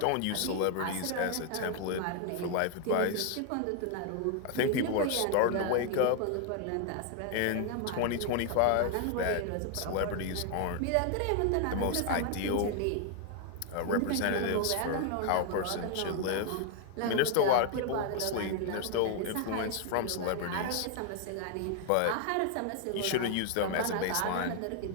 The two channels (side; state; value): both; different; correlation 0.00